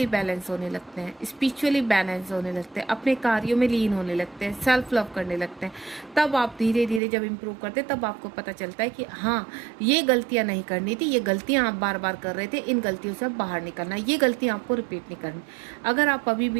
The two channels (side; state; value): left; drops out; at 7.0 s